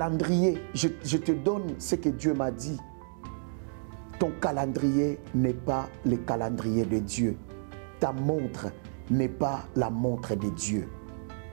je te donne ce que Dieu m'a dit. Ton calendrier n'est pas le calendrier de Dieu. Ta montre n'est pas la montre de Dieu.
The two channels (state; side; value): silent; left; digital silence